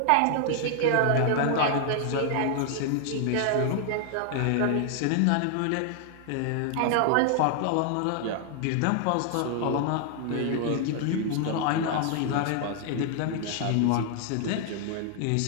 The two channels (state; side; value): different; both; correlation 0.00